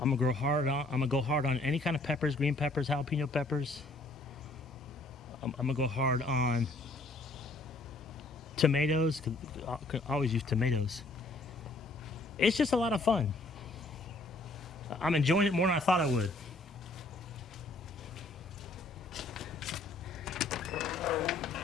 I'm gonna go hard on any kind of peppers, green peppers, jalapeno peppers. I'm gonna go hard on tomatoes, cause I can always use tomatoes. It's just a lot of fun. I'm enjoying it more than I thought I would.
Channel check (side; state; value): right; quieter; 3.0 dB